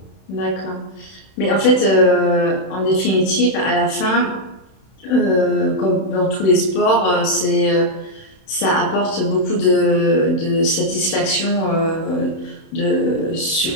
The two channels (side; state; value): right; late; 31 ms